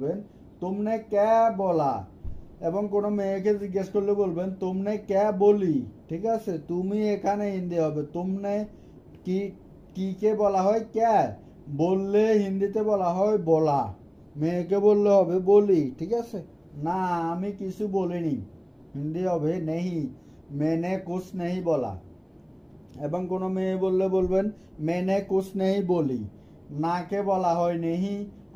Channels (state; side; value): identical; both; correlation 1.00